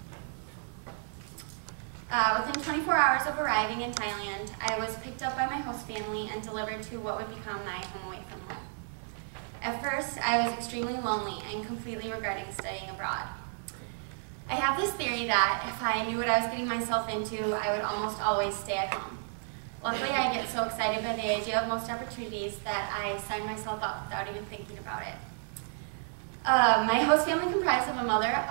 Within 24 hours of arriving in Thailand, I was picked up by my host family and delivered to what would become my home away from home. At first, I was extremely lonely and completely regretting studying abroad. I have this theory that if I knew what I was getting myself into, I would almost always stay at home. Luckily, I get so excited by the idea of most opportunities that I sign myself up without even thinking about it. My host family comprised of a mother,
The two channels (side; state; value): left; silent; digital silence